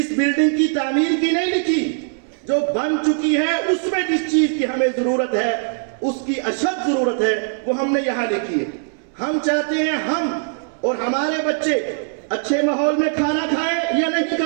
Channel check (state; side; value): silent; left; 65 dB below the other